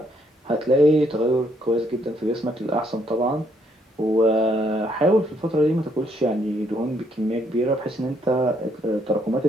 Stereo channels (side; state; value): both; normal; correlation 0.71